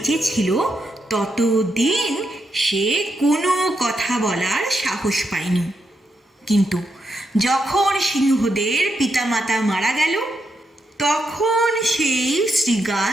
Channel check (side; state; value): both; normal; correlation 0.82